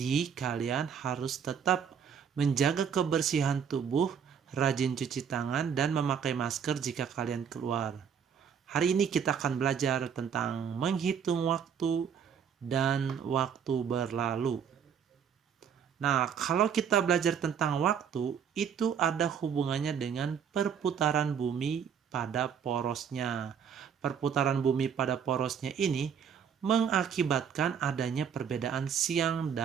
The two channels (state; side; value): quieter; left; 7.6 dB